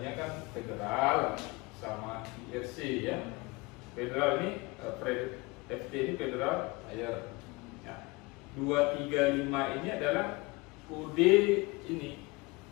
kan Federal sama IRC ya. Federal ini FT ini Federal Air. Ya. 235 ini adalah kode ini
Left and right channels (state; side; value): quieter; right; 24.7 dB